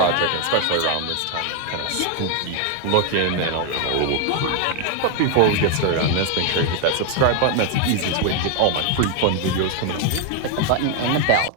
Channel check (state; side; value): different; both; correlation 0.01